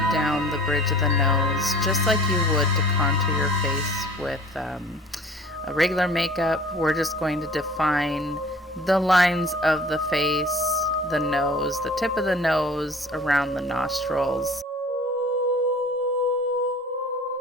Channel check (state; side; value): normal; both; correlation 0.47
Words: down the bridge of the nose, just like you would to contour your face with a regular makeup. We're just going to define the lines of the face, the nose, the tip of the nose, around the nostrils.